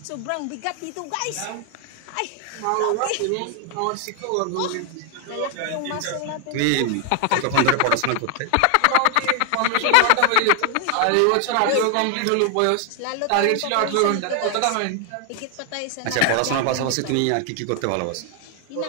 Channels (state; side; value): different; both; correlation 0.00